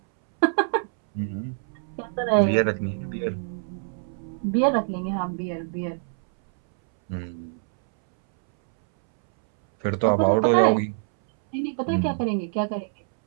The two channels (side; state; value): left; silent; 62 dB below the other